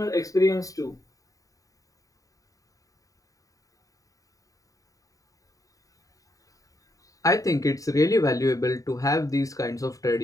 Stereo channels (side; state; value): right; late; 0.16 ms